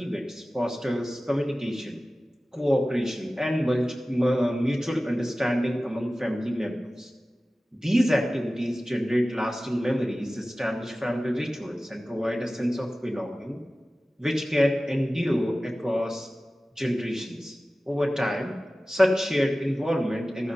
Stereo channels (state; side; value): normal; both; correlation 0.96